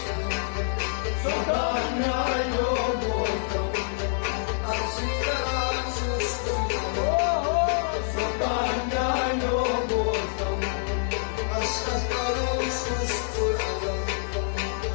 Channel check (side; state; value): right; silent; digital silence